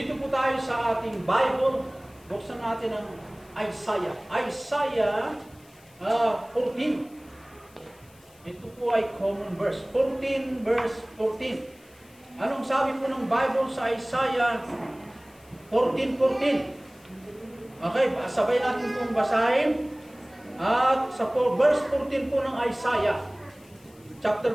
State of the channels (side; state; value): left; noise; hiss, 28 dB below the sound